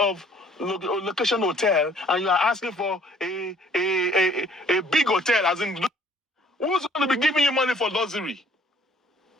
location hotel, and you are asking for a big hotel, as in, who's going to be giving you money for luxury?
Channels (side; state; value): both; normal; correlation 0.58